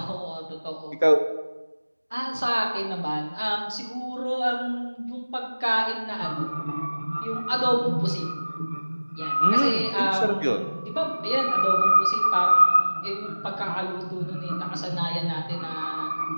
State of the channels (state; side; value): inverted; both; correlation -1.00